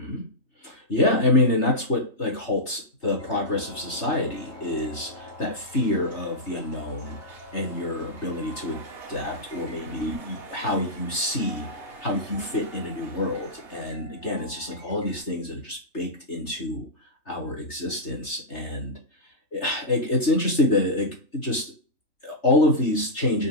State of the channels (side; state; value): right; late; 3.3 ms